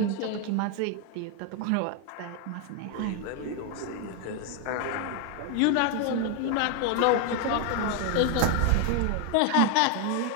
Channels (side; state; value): both; different; correlation 0.01